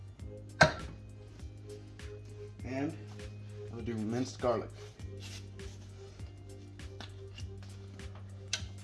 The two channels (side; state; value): both; identical; correlation 1.00